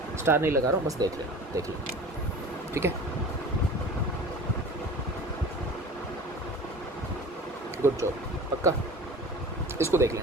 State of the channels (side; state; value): both; normal; correlation 0.39